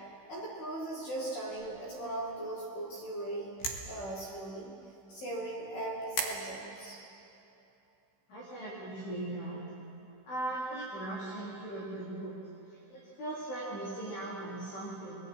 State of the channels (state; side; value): late; right; 16 ms